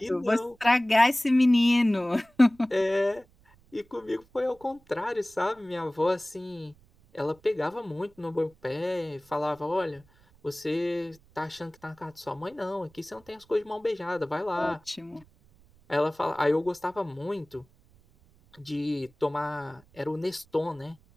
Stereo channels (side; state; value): right; noise; rumble, 29 dB below the sound